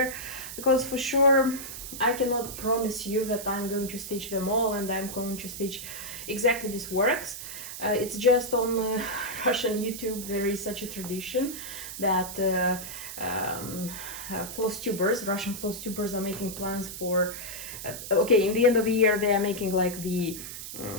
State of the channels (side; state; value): right; noise; hiss, 9 dB below the sound